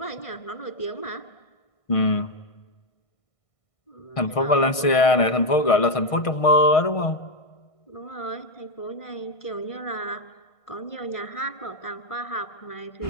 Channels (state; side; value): late; right; 1.6 ms